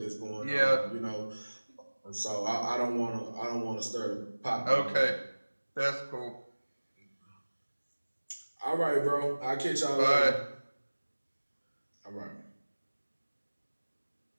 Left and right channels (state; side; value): inverted; both; correlation -1.00